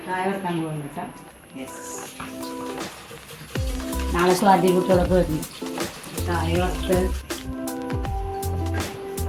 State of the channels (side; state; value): both; identical; correlation 1.00